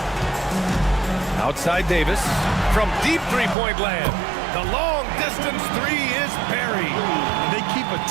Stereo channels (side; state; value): left; drops out; at 3.6 s